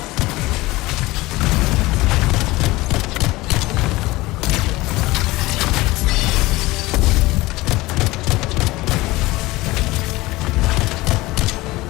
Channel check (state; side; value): quieter; right; 20.0 dB